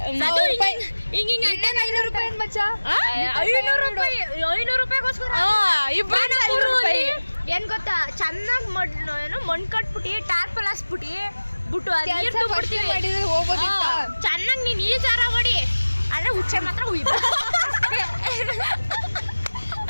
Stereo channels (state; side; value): inverted; both; correlation -1.00